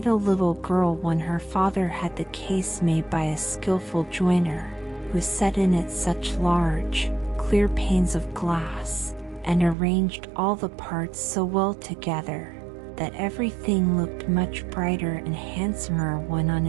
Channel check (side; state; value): left; drops out; at 9.8 s